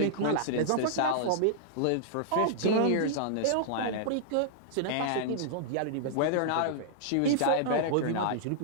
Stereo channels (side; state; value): both; different; correlation -0.01